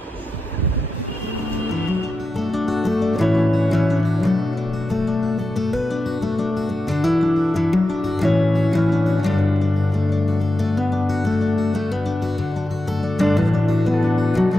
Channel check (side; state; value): both; normal; correlation 0.90